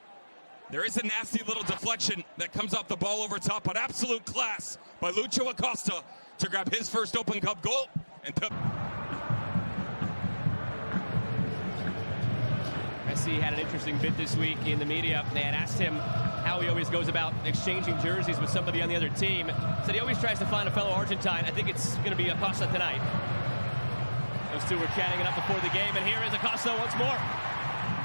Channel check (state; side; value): inverted; both; correlation -1.00